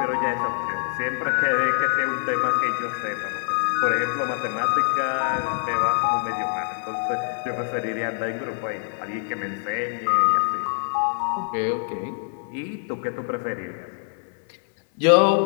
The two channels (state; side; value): silent; right; digital silence